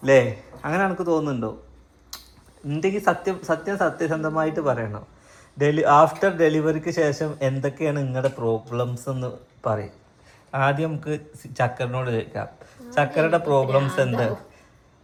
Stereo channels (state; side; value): identical; both; correlation 1.00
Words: അല്ലേ? അങ്ങനെ എനിക്ക് തോന്നുന്നുണ്ടോ? ഉണ്ടെങ്കിൽ സത്യസന്ധമായിട്ട് പറയണം. ആഫ്റ്റർ ഡെലിവറിക്ക് ശേഷം എന്തൊക്കെയാണ് നിങ്ങളുടെ പ്രോബ്ലംസ് എന്ന് പറയും. ആദ്യം നമുക്ക് ചക്കറിനോട് ചോദിക്കാം. ചക്കരയുടെ പ്രോബ്ലംസ് എന്ത്?